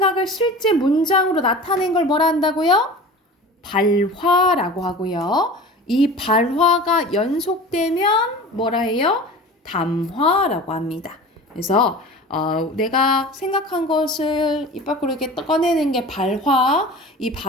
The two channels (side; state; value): both; normal; correlation 0.37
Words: 실제 문장으로 나타낸 걸 뭐라 한다고요? 발화라고 하고요. 이 발화가 연속되면 뭐라 해요? 담화라고 합니다. 그래서 내가 생각한 것을 입 밖으로 이렇게 꺼내는 게 발화, 이